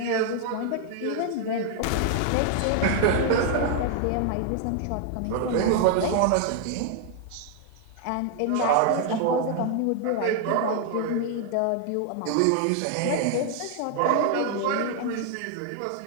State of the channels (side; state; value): both; different; correlation 0.00